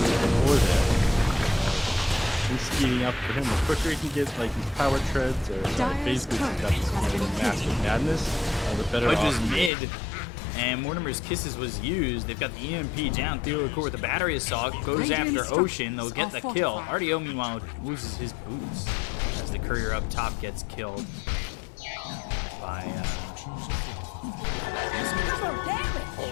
before there. He's speeding up for him. The quicker he can get like his power treads or phase boosts up to massive madness, the better Pudge off is he is. mid, and Mortimer's Kisses was used. They've got the EMP down. Theokor with the battery assault goes after Ocean. They'll get the kill. RDO, meanwhile, loses his boots as the courier up top gets killed by.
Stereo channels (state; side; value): drops out; right; at 9.7 s